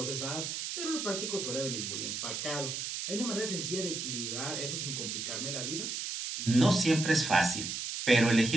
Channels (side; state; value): right; noise; hiss, 4 dB below the sound